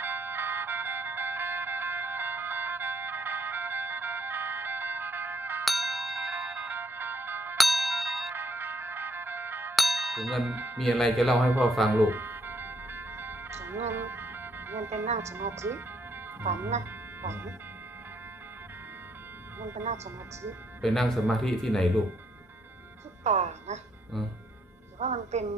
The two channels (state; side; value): normal; both; correlation 0.72